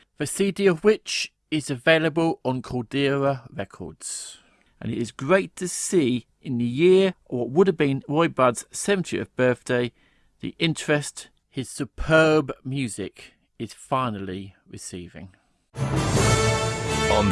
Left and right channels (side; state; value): both; identical; correlation 1.00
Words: the CD of which is available on Caldera Records. And it is great to see in the year of what would have been Roy Budd's 70th birthday, the interest his superb music is finally receiving. On